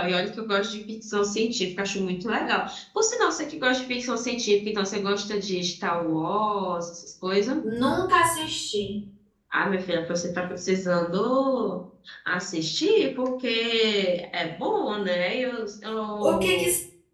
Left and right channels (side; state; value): both; identical; correlation 1.00